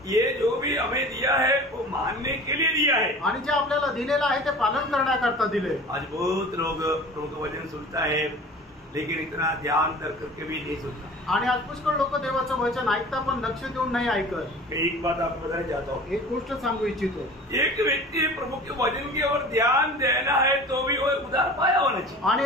ये जो भी हमें दिया है वो मानने के लिए दिया है आणि जे आपल्याला दिलेलं आहे ते पालन करण्याकरता दिले। आज बहुत लोग प्रभु का वचन सुनता है लेकिन इतना ध्यान कर करके भी नहीं सुनता। आणि आज पुष्कळ लोक देवाचं वचन ऐकता पण लक्ष देऊन नाही ऐकत। मैं एक बात आपको बताना चाहता हूँ, एक गोष्ट सांगू इच्छितो। एक व्यक्ति प्रभु के वचन की ओर ध्यान देना है तो भी वो उदार पाया होना चाहिए। आणि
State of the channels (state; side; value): normal; both; correlation 0.40